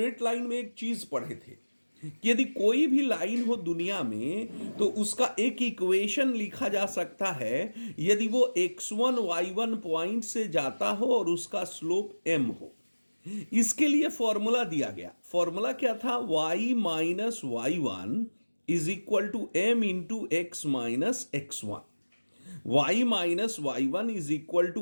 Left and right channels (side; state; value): both; inverted; correlation -1.00